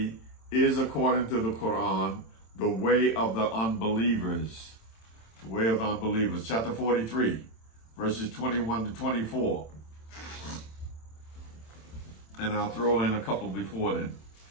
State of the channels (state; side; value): late; right; 27 ms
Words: is, according to the Quran, the way of the unbelievers. The way of the unbelievers. Chapter 43, verses 21 to 24. And I'll throw in a couple before then.